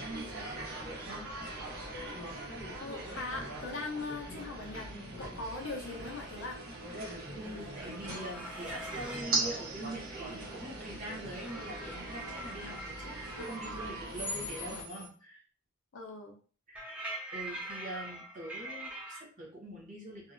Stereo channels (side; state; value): both; normal; correlation 0.24